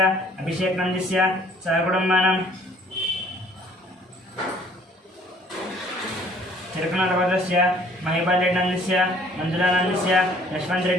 अभिषेकनन्दस्य सहकुटुम्बानां तिरुकनगोत्रस्य महिपालरेड्डनन्दस्य मंजुलानन्दस्य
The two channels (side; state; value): both; normal; correlation 0.57